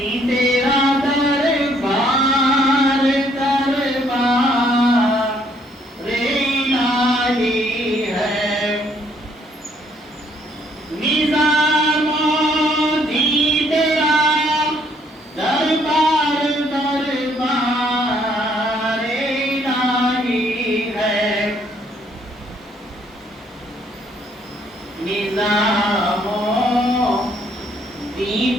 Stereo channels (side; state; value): both; normal; correlation 0.66